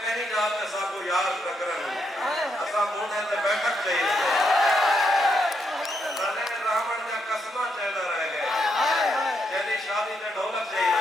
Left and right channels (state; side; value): normal; both; correlation 0.79